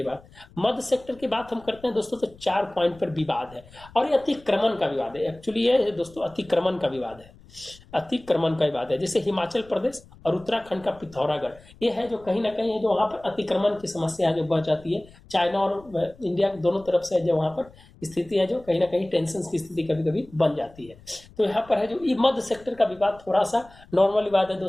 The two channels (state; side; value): noise; left; rumble, 24 dB below the sound